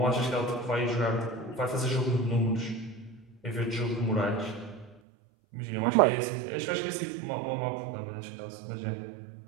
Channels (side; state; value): left; drops out; at 5.0 s